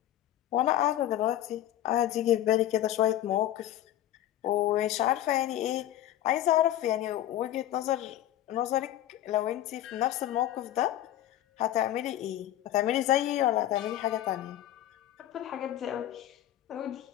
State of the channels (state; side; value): quieter; right; 13.0 dB